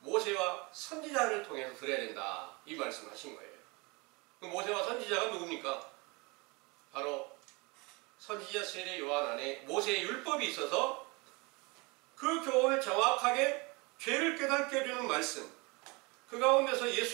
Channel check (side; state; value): left; quieter; 27.3 dB